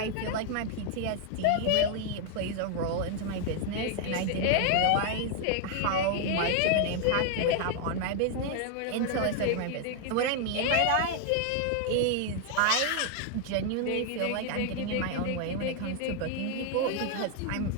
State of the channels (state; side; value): different; both; correlation 0.00